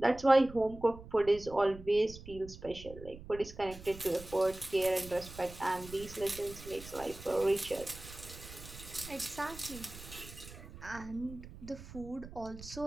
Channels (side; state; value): right; noise; rumble, 15 dB below the sound